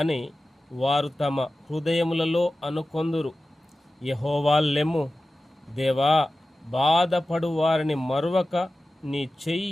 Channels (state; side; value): normal; both; correlation 0.95